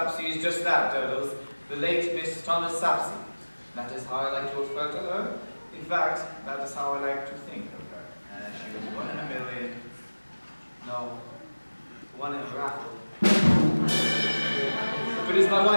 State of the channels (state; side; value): inverted; both; correlation -1.00